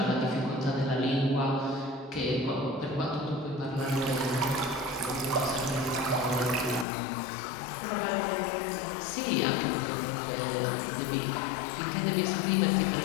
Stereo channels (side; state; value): right; drops out; at 6.9 s